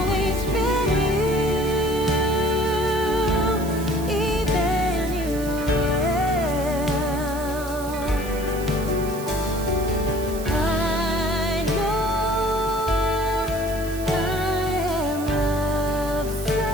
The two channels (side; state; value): right; noise; hiss, 14 dB below the sound